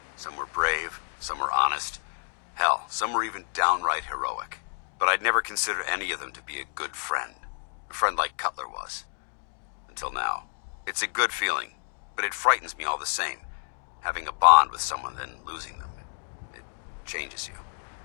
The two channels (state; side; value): silent; right; 59 dB below the other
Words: Some were brave, some were honest. Hell, some were even downright heroic. But I'd never considered any of them to be a good friend. A friend like Cutler was. Until now. It's a good feeling, but it frightens me all the same. Having a bond with someone, then losing them. It changes you.